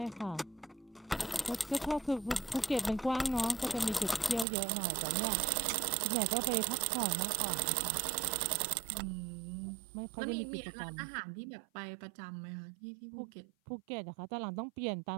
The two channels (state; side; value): drops out; left; at 4.5 s